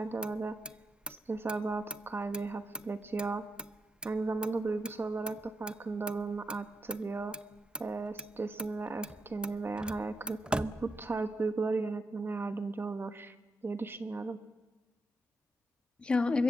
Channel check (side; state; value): both; normal; correlation 0.84